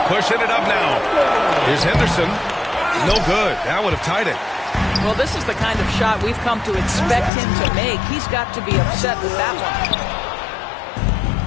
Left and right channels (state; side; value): drops out; right; at 7.3 s